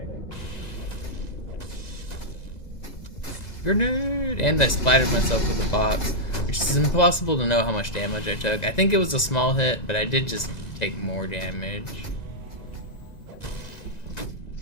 Grenade! And I splattered myself with the box, which is impossible to know how much damage I took. I think it was a small hit, but I did just take more damage.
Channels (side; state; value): right; late; 1.9 ms